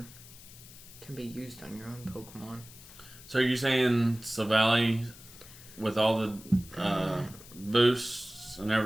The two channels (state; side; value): noise; left; hiss, 19 dB below the sound